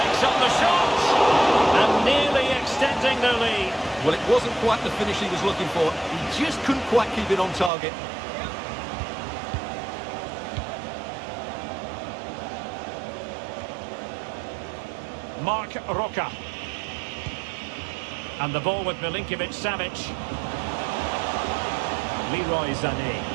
up the shot. And nearly extending the lead. Well, it wasn't quite the finish he was looking for. He just couldn't quite keep it on target. Mark Roca. And the ball with Milinkovic-Savic. Leroy Sané.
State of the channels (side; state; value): left; drops out; at 7.7 s